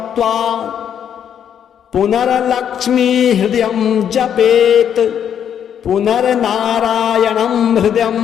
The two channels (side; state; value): right; quieter; 8.9 dB